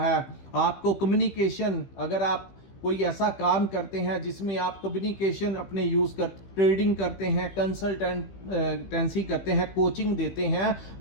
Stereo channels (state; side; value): late; right; 15 ms